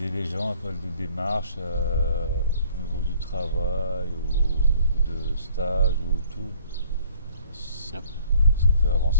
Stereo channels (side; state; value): both; inverted; correlation -0.57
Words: les gens à faire des démarches au niveau du travail, au niveau de stage ou tout, Yep. ça fait